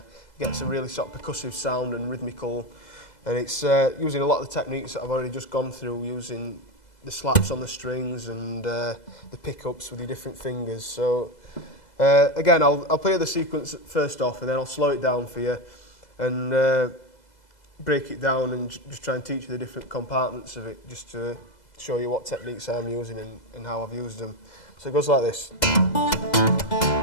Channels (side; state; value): right; late; 2.0 ms